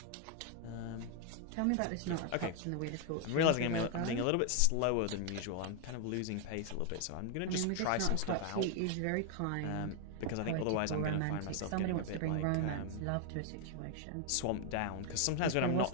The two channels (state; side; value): different; both; correlation 0.00